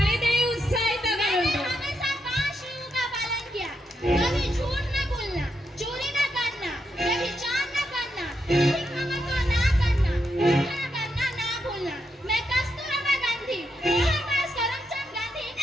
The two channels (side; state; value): both; normal; correlation 0.82